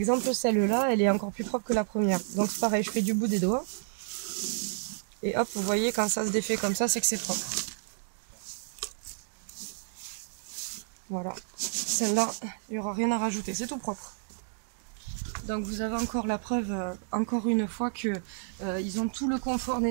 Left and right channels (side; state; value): left; silent; digital silence